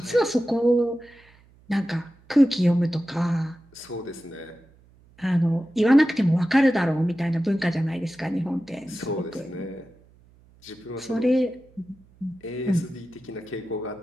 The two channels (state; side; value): noise; right; hum, 28 dB below the sound